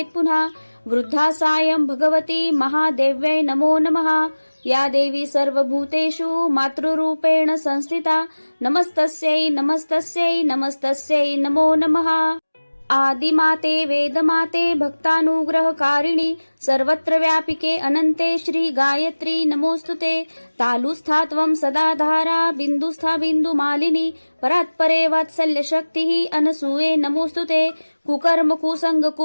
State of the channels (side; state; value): both; inverted; correlation -1.00